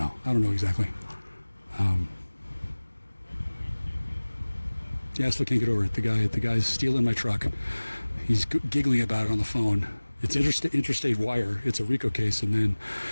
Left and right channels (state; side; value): inverted; both; correlation -1.00